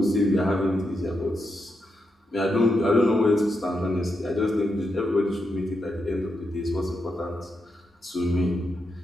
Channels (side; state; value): both; normal; correlation 0.84